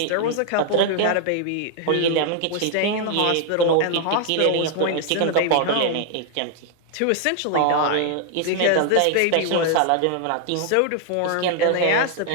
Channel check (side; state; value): both; different; correlation 0.00